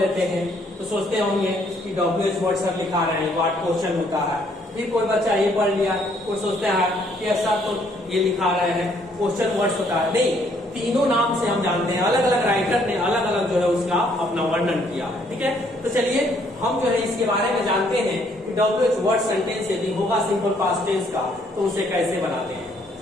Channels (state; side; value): normal; both; correlation 0.67